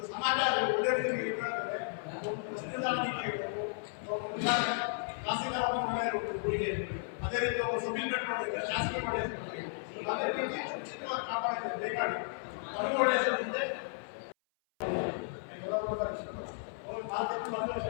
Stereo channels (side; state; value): right; silent; 55 dB below the other